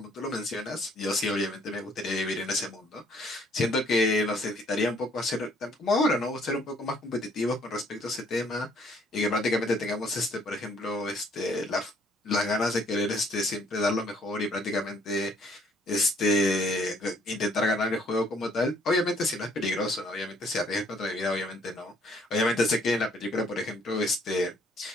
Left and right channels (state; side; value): normal; both; correlation 0.63